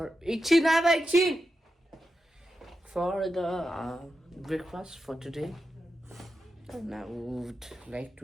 for the breakfast for today. And I would like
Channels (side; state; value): both; normal; correlation 0.89